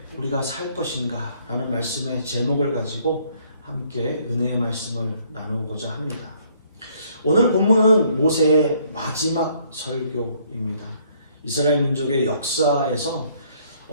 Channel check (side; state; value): both; inverted; correlation -0.64